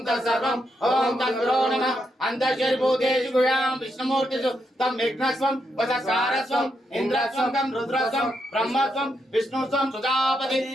तत्सर्वम ओम तद्गुरो नमः। अंतर्शरीभूतेषु गुह्यां विष्णुमूर्तिषु तं विघ्नस्वं वचस्कारस्वं इंद्रस्वं तं रुद्रस्वं ब्रह्मस्वं विष्णुस्वं सुजापति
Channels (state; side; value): normal; both; correlation 0.81